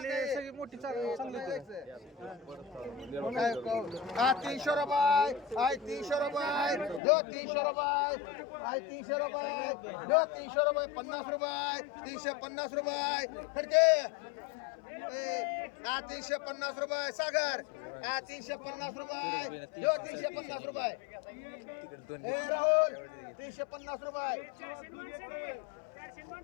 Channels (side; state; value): right; drops out; at 7.0 s